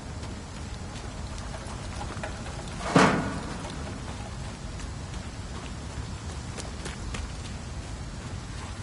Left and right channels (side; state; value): both; identical; correlation 1.00